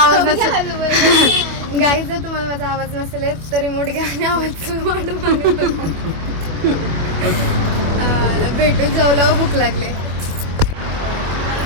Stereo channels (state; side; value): late; left; 25 ms